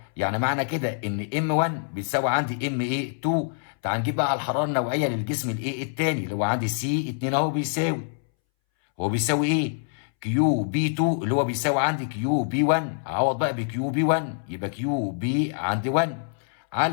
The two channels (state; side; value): silent; right; 61 dB below the other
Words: يعني معنى كده ان ام 1 بيساوي عندي ام 2. تعال نجيب بقى الحراره النوعيه للجسم الثاني اللي هو عندي سي 2 اهو بيساوي، هو بيساوي ايه؟ كيو بي 2 اللي هو بيساوي عندي كيو بي 1. اعوض بقى بكيو بي 1 يبقى كيو بي عندي 1